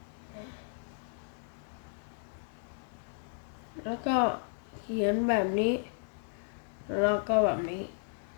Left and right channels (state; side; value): silent; right; 55 dB below the other